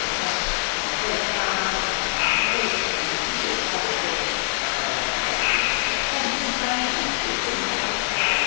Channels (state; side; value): quieter; right; 34.0 dB